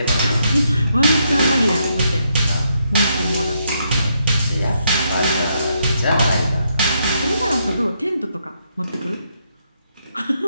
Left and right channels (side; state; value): both; inverted; correlation -0.77